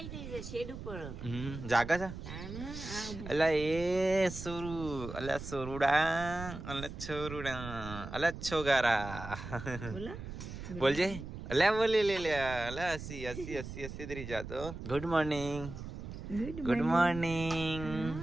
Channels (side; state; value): right; noise; rumble, 9 dB below the sound